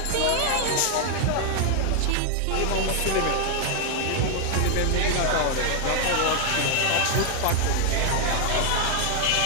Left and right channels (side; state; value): both; different; correlation 0.00